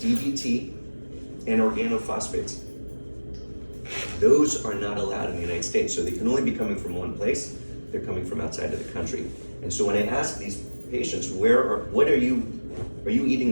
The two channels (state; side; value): inverted; both; correlation -1.00